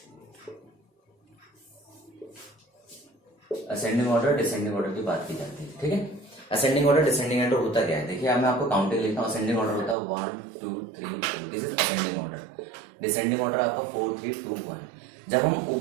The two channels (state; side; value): drops out; left; at 10.0 s